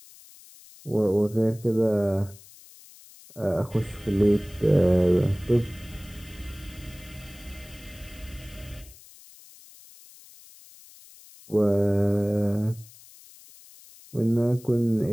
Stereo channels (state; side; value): noise; left; hiss, 22 dB below the sound